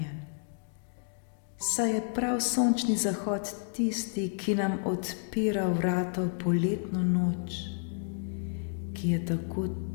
saj je prav sončni zahod tisti, ki nam odpira vrata v poletno noč, ki je tako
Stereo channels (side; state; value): right; silent; digital silence